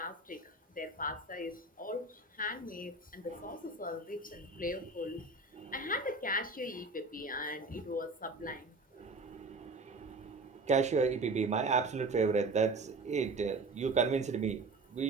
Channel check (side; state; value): left; quieter; 3.3 dB